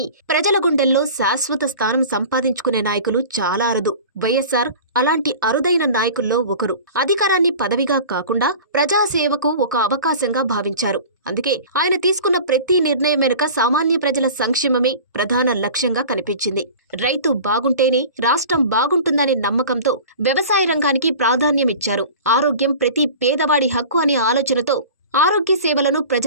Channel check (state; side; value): inverted; both; correlation -0.39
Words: ప్రజల గుండెల్లో శాశ్వత స్థానం సంపాదించుకునే నాయకులు చాలా అరుదు. వైఎస్ఆర్ అలాంటి అరుదైన నాయకుల్లో ఒకరు. అధికారాన్ని పదవిగా కాకుండా ప్రజాసేవకు ఒక అవకాశంగా భావించారు. అందుకే ఆయన తీసుకున్న ప్రతి నిర్ణయం వెనుక సామాన్య ప్రజల సంక్షేమమే ప్రధాన లక్ష్యంగా కనిపించింది. రైతు బాగుంటేనే రాష్ట్రం బాగుంటుందనే నమ్మకంతో వ్యవసాయ రంగానికి ప్రాధాన్యమిచ్చారు. ఆరోగ్యం ప్రతి పేదవాడి హక్కు అనే ఆలోచనతో ఆరోగ్య సేవలను